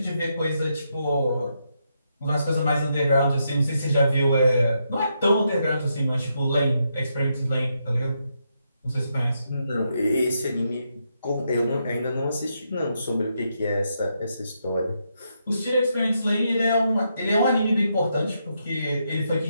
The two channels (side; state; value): both; inverted; correlation -0.81